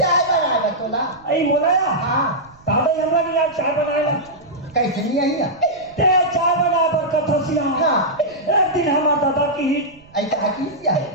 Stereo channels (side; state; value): right; noise; rumble, 27 dB below the sound